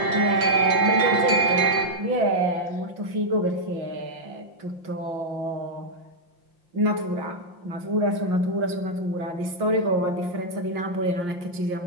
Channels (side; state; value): left; late; 5.7 ms